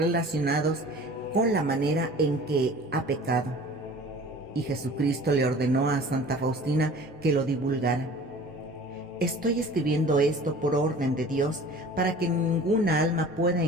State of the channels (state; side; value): normal; both; correlation 0.44